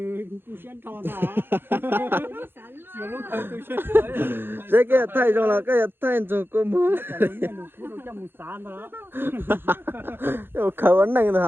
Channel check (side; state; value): left; late; 0.10 ms